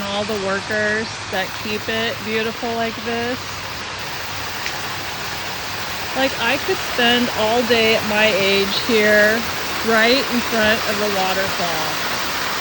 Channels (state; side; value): identical; both; correlation 1.00